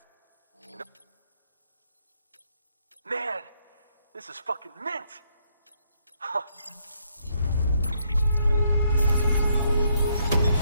Man, this is fucking mint! Huh.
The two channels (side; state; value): both; inverted; correlation -0.72